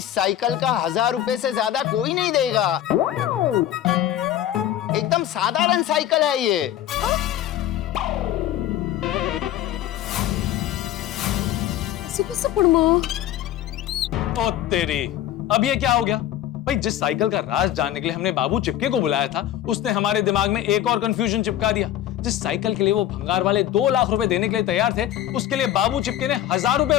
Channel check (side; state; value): right; quieter; 12.2 dB